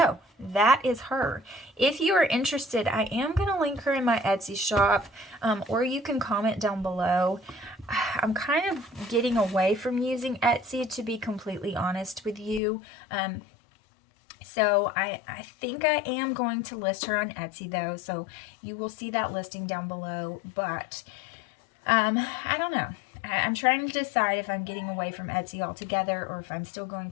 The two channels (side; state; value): right; drops out; at 12.6 s